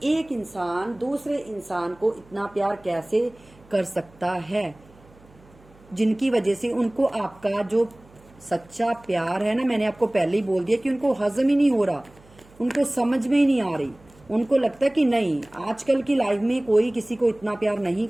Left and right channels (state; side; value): noise; right; hum, 27 dB below the sound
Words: एक इंसान दूसरे इंसान को इतना प्यार कैसे कर सकता है, जिनकी वजह से उनको आपका जो सच्चा प्यार है ना, मैंने आपको पहले ही बोल दिया कि उनको हजम ही नहीं हो रहा, उनको समझ में ही नहीं आ रही। उनको लगता है कि नहीं, आजकल की लाइफ में कोई किसी को इतना प्यार नहीं